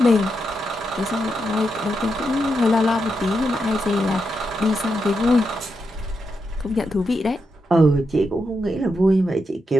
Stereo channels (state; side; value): normal; both; correlation 0.84